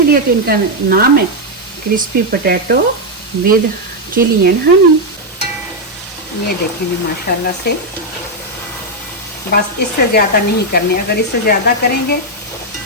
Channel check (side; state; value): both; normal; correlation 0.01